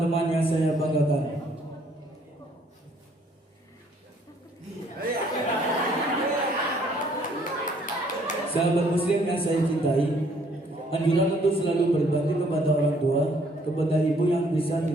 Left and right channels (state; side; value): normal; both; correlation 0.64